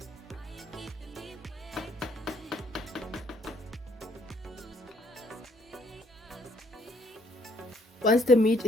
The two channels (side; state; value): both; normal; correlation 0.67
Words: Once the meat